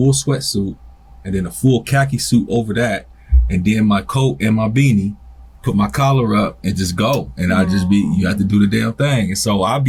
sweatsuit and then a full khaki suit over that, and then my coat and my beanie, put my collar up and just go. And you have to do the damn thing. And so I'll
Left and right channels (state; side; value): identical; both; correlation 1.00